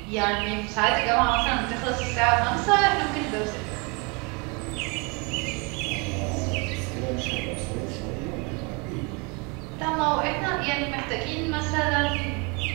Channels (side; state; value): left; quieter; 30.6 dB